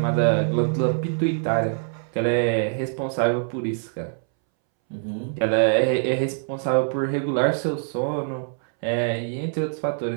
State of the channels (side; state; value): left; silent; 63 dB below the other